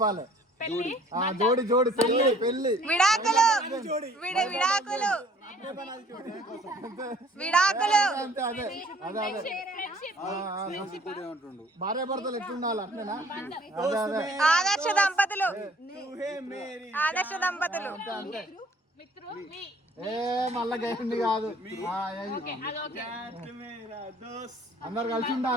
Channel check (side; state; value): both; normal; correlation 0.56